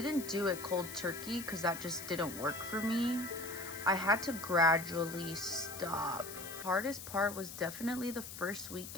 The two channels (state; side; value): noise; left; hiss, 11 dB below the sound